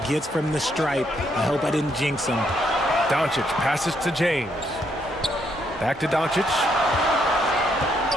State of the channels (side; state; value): both; normal; correlation 0.74